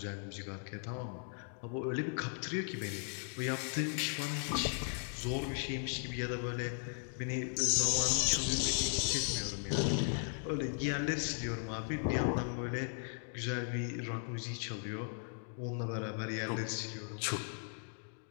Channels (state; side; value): silent; right; 53 dB below the other